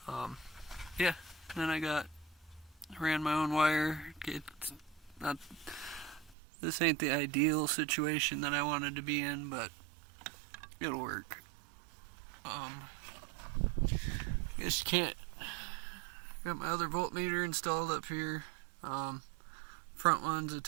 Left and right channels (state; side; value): drops out; left; at 6.4 s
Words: Yeah, then I ran my own wire. This ain't the ideal situation that I wanted to be in, but it'll work. I guess you can't. Got my other voltmeter installed up here. Front one's